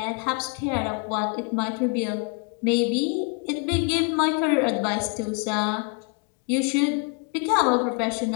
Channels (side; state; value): right; quieter; 35.6 dB